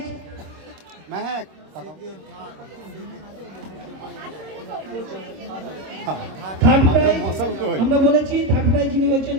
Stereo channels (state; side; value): late; left; 26 ms